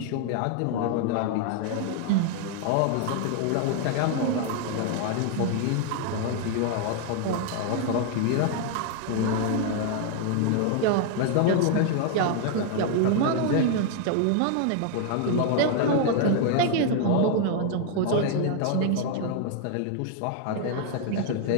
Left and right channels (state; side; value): different; both; correlation 0.00